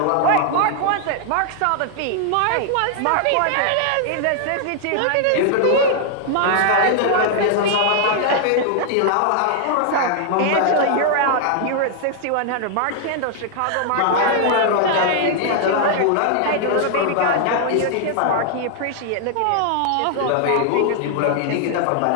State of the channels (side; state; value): both; different; correlation 0.00